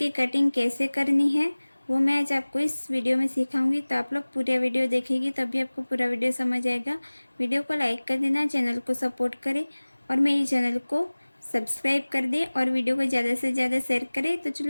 कटिंग कैसे करनी है वो मैं आज आपको इस वीडियो में सिखाऊंगी। तो आप लोग पूरा वीडियो देखेंगे तभी आपको पूरा वीडियो समझ आएगा। वीडियो को लाइक कर देना, चैनल को सपोर्ट करें और मेरे चैनल को सब्सक्राइब कर दें और वीडियो को ज़्यादा से ज़्यादा शेयर करें। तो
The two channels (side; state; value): both; inverted; correlation -1.00